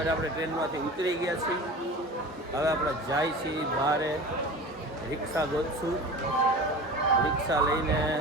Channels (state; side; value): normal; both; correlation 0.35